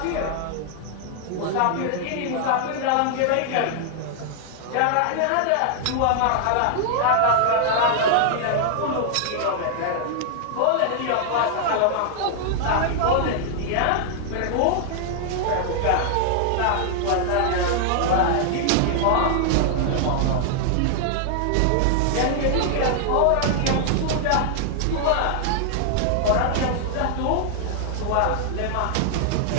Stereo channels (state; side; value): different; both; correlation -0.01